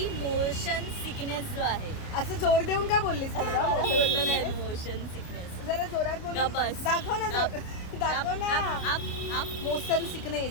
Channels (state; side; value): late; right; 29 ms